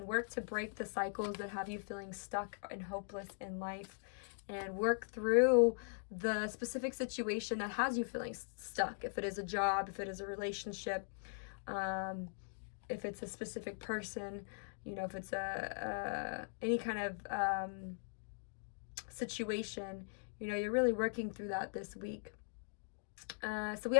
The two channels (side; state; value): right; silent; digital silence